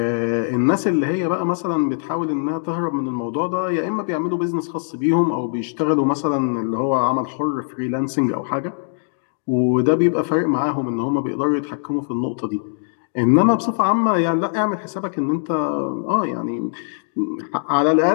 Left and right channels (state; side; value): silent; right; digital silence